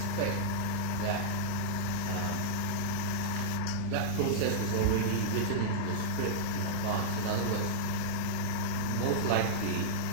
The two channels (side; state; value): both; different; correlation -0.04